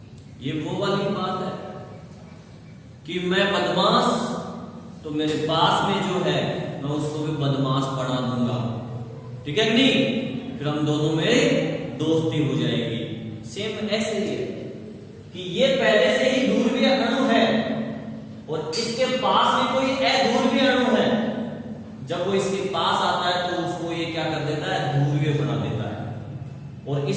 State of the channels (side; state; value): both; identical; correlation 1.00